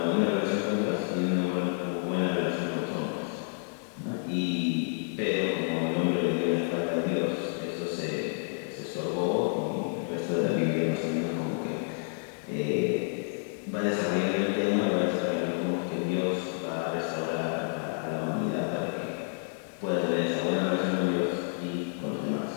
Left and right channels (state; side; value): silent; right; 57 dB below the other